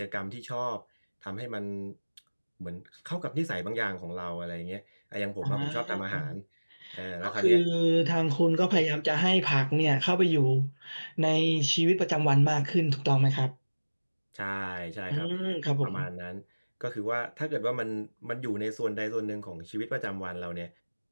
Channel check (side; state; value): both; inverted; correlation -1.00